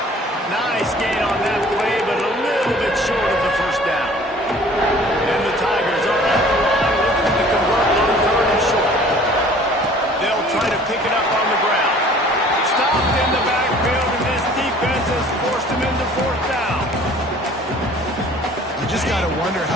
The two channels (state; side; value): normal; both; correlation 0.51